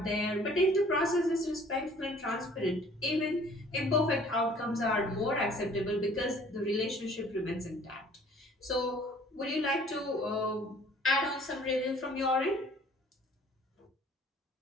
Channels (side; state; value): both; normal; correlation 0.53